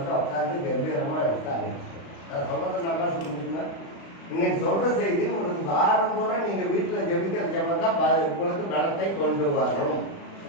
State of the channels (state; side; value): late; right; 36 ms